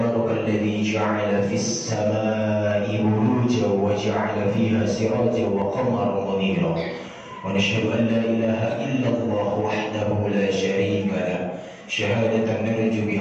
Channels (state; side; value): identical; both; correlation 1.00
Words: الذي جعل في السماء بروجا وجعل فيها سراجا وقمرا منيرا ونشهد أن لا إله إلا الله وحده لا شريك له شهادة نرجو